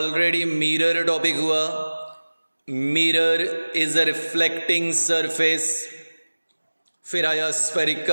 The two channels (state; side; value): inverted; both; correlation -1.00